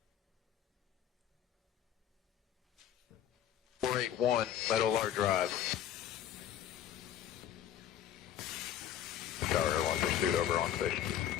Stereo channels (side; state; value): right; quieter; 10.7 dB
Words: .481 Meadow Lark Drive. Tower Airline pursuit over on station.